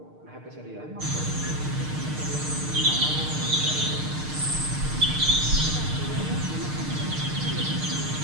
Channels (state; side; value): late; left; 6.6 ms